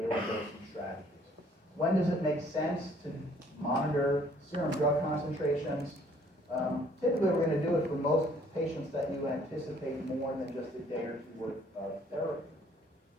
dosing strategies. When does it make sense to monitor serum drug concentrations? Typically, we're going to do it for most patients that you anticipate more than just a day or 2 worth of therapy.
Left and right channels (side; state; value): both; normal; correlation 0.60